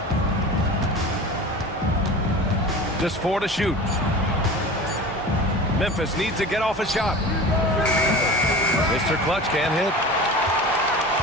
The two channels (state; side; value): normal; both; correlation 0.35